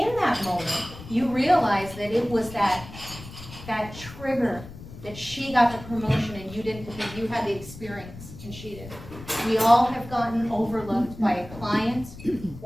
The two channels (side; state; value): left; noise; rumble, 15 dB below the sound